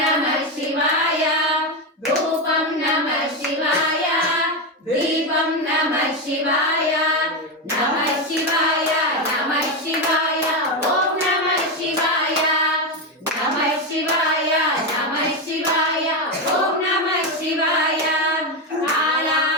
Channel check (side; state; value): both; normal; correlation 0.11